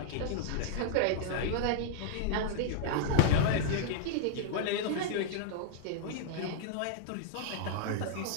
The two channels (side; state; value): both; different; correlation -0.01